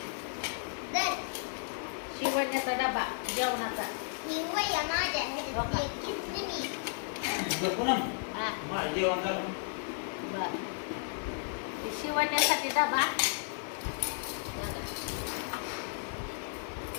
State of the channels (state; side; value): silent; right; digital silence